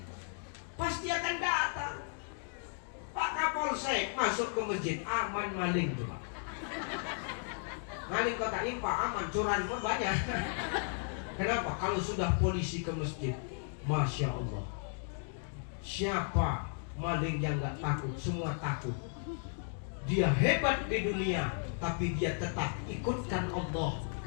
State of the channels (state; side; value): silent; right; 55 dB below the other